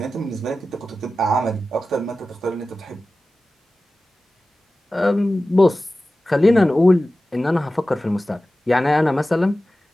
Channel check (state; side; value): normal; both; correlation 0.95